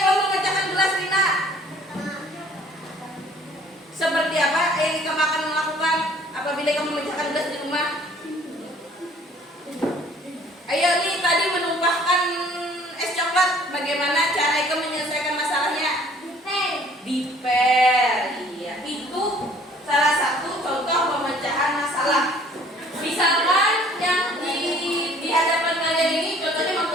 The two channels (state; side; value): normal; both; correlation 0.55